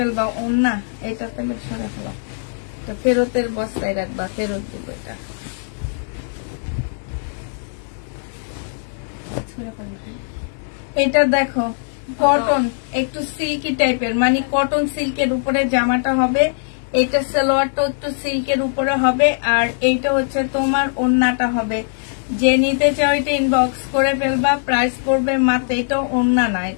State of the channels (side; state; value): right; silent; 63 dB below the other